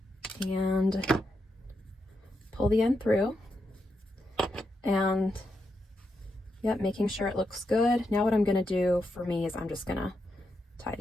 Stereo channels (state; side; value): normal; both; correlation 0.84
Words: and pull the end through, and yep, making sure it looks good. Now what I'm going to do for me is I'm just going to tie